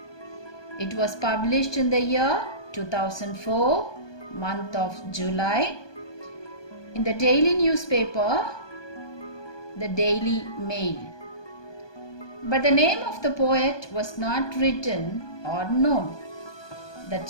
It was published in the year 2004, month of July, in the daily newspaper, the Daily Mail. But the name of the poet was not written or known.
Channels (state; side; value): late; right; 1.2 ms